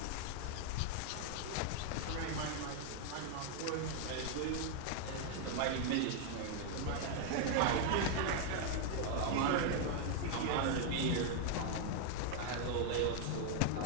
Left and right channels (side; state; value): both; different; correlation 0.00